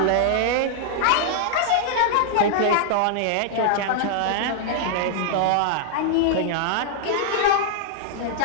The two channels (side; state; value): both; different; correlation -0.01